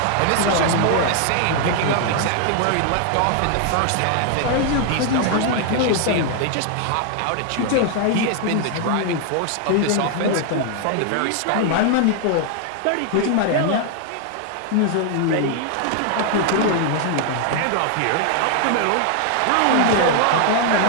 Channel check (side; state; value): both; different; correlation 0.00